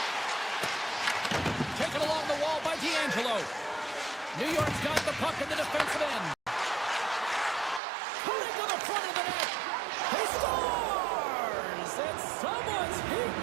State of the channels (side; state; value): left; drops out; at 7.8 s